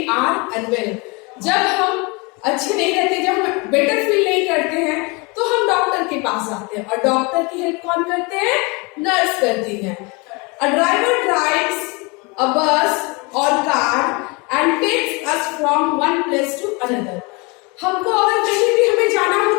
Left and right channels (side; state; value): right; quieter; 28.4 dB